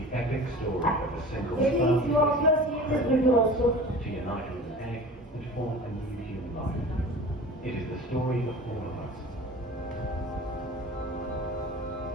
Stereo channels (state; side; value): normal; both; correlation 0.38